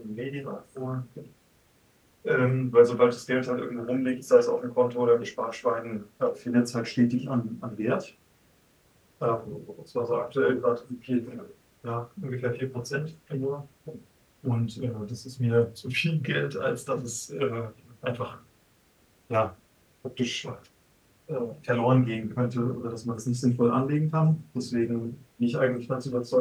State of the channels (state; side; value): identical; both; correlation 1.00